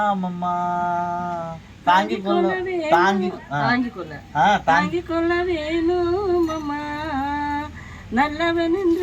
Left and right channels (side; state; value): both; identical; correlation 1.00